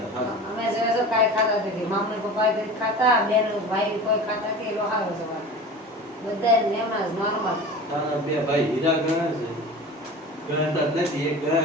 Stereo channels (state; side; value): normal; both; correlation 0.35